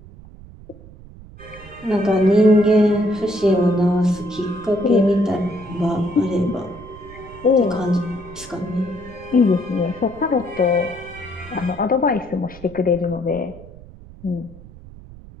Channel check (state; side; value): noise; right; rumble, 19 dB below the sound